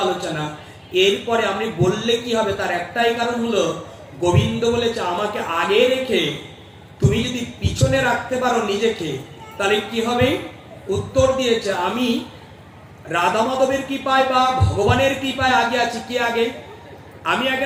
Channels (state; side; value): identical; both; correlation 1.00